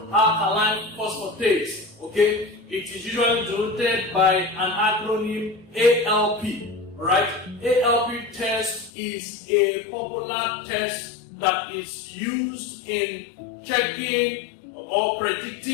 Alkaline Phosphatase. Okay, it is usually denoted by an acronym ALP. Alright, ALP test is a popular test that is used in checking or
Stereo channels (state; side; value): drops out; right; at 8.9 s